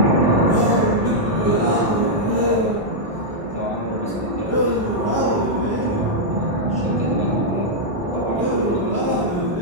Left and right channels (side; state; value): both; normal; correlation -0.05